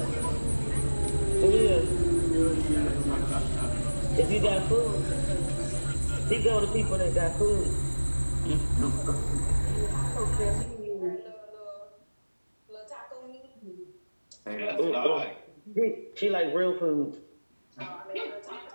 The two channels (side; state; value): both; inverted; correlation -1.00